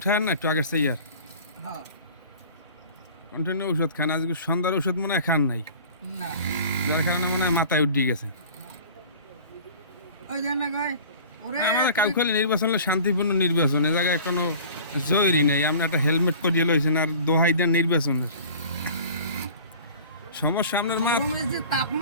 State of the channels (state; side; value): inverted; both; correlation -0.43